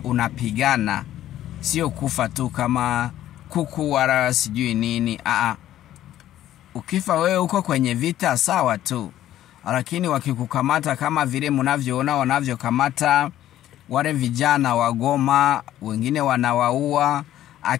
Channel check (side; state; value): right; quieter; 12.8 dB